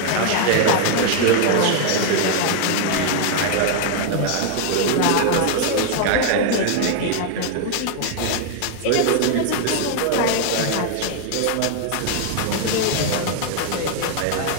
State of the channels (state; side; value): different; both; correlation 0.00